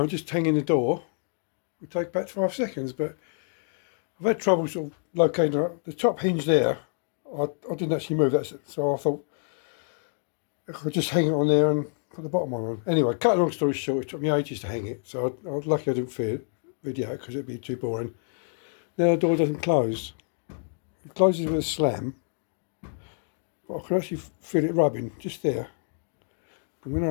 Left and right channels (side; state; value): right; silent; 60 dB below the other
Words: just hanging the door, would take about 5 seconds, but I've had trouble sort of locating the top hinge there. I didn't actually move that, so I thought I could just hang it on there and put the bottom one on. Anyway, cut a long story short, it took me ages to hang it, so I was lucky I didn't video because it'd be too boring. Now the door doesn't close. It closes with a slam, but I can actually feel it rubbing just there. And when